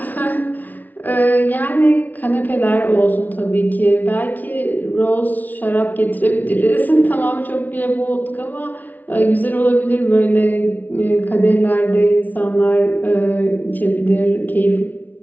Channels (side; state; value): right; late; 0.079 ms